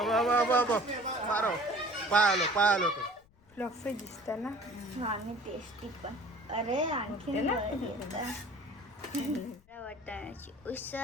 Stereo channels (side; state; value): left; noise; rumble, 30 dB below the sound